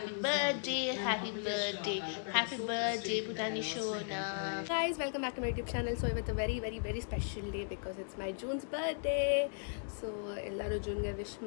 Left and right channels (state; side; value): silent; right; digital silence